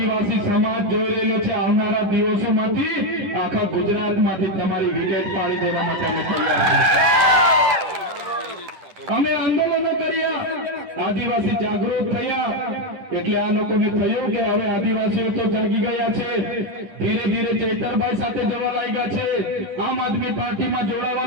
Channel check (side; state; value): left; late; 10 ms